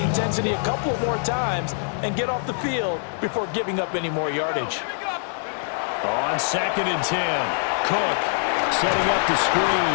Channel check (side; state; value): right; silent; 63 dB below the other